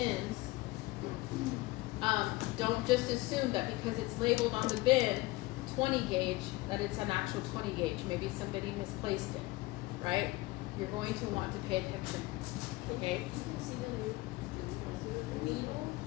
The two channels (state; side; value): quieter; right; 20.5 dB